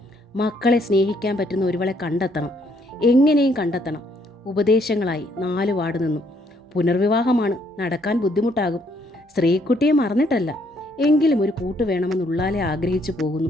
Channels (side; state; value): both; normal; correlation 0.69